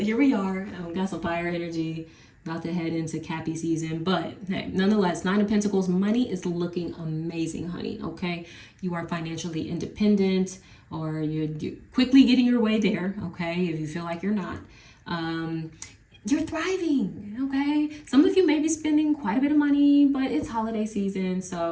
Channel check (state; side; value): identical; both; correlation 1.00